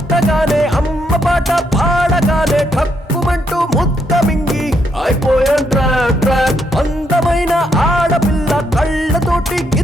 అమ్మ పాట పాడగానే ఠక్కుమంటూ ముద్ద మింగి అయిపోయాను ట్రాప్ ట్రాప్ అందమైన ఆడపిల్ల కళ్ళతోటి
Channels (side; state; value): both; normal; correlation 0.76